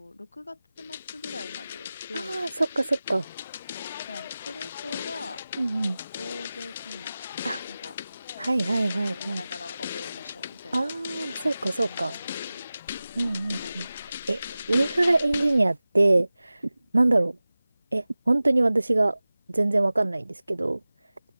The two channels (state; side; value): inverted; both; correlation -0.97